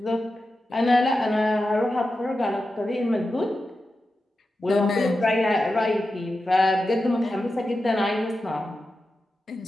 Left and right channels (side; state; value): both; normal; correlation 0.91